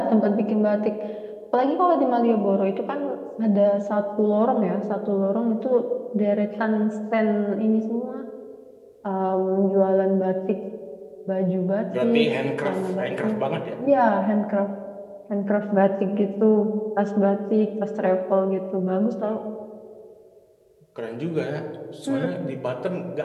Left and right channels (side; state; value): both; identical; correlation 1.00